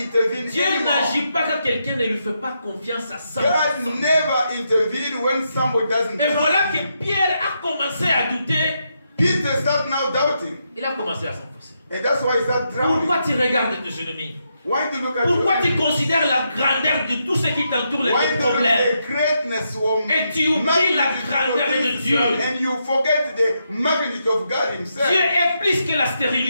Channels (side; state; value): both; inverted; correlation -0.81